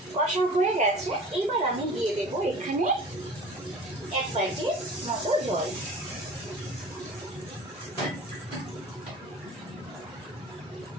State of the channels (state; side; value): normal; both; correlation 0.41